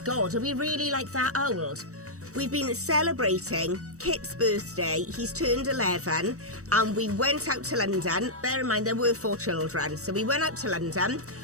are we really like that old? We've been celebrating Kit's birthday. He's turned 11 and we went out to London. Bear in mind, there were 4 children. So we went out to London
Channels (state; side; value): late; left; 0.65 ms